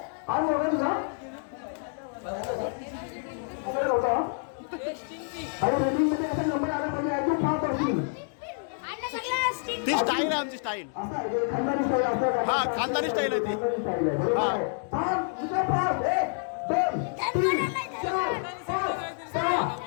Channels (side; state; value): right; silent; 59 dB below the other